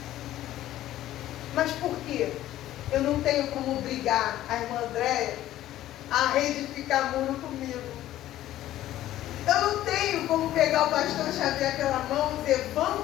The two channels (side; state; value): right; quieter; 13.7 dB